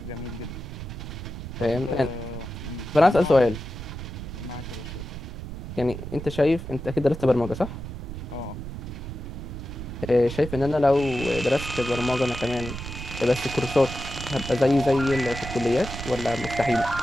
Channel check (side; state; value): right; noise; rumble, 9 dB below the sound